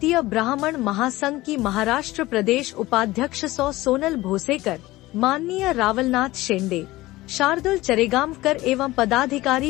ब्राह्मण महासंघ की महाराष्ट्र प्रदेश उपाध्यक्ष सोनल भोसेकर, माननीय रावलनाथ शेंडे, शार्दुल चरेगांवकर एवं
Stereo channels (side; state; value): right; quieter; 18.3 dB